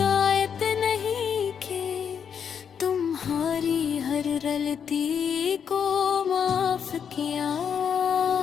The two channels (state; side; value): quieter; right; 7.5 dB